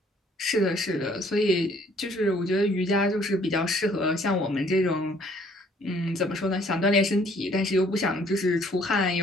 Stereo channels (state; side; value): normal; both; correlation 0.61